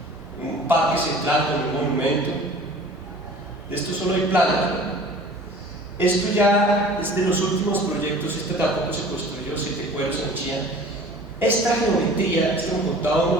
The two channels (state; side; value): normal; both; correlation 0.46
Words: Un parque central con un monumento. De esto solo hay planos, ¿no? Esto ya es de los últimos proyectos. Este tampoco se construyó, 7 cueros en Chía. Esta geometría, esto me contaba uno